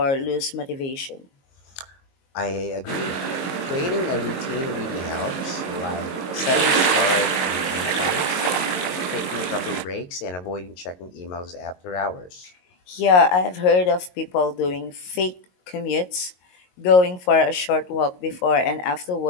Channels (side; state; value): right; late; 22 ms